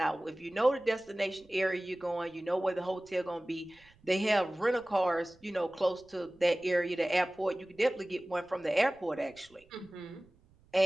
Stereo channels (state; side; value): noise; right; rumble, 30 dB below the sound